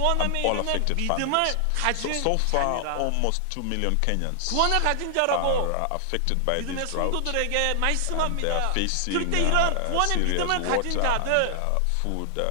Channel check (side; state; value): both; different; correlation 0.00